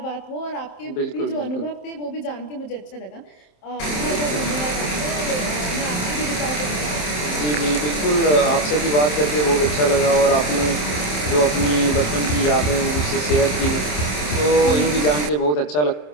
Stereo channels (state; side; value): late; right; 27 ms